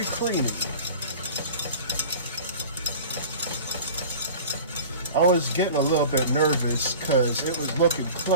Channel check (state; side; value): inverted; both; correlation -0.39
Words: creamy. I was getting a little bit nervous because it was looking